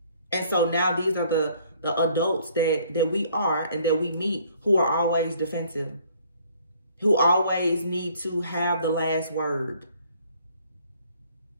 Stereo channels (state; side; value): inverted; both; correlation -0.60